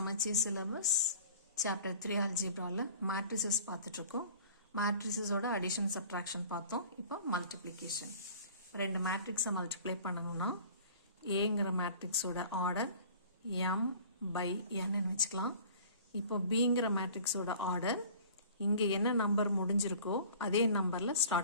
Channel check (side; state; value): both; inverted; correlation -0.46